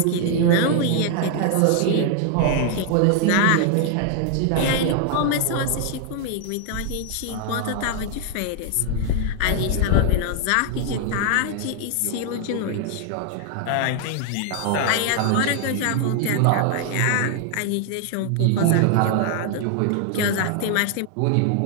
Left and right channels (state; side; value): different; both; correlation 0.00